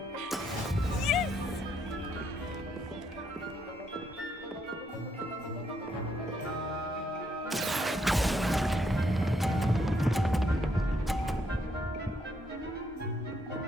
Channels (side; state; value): both; normal; correlation 0.74